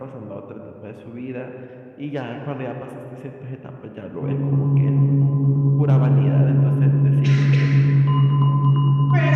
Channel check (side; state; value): both; identical; correlation 1.00